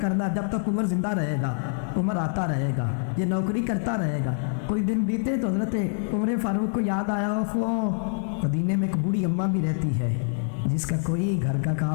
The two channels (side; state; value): right; silent; 61 dB below the other